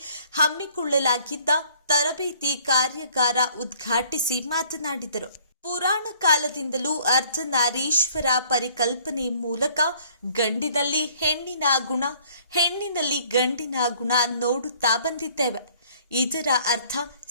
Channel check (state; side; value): inverted; both; correlation -0.58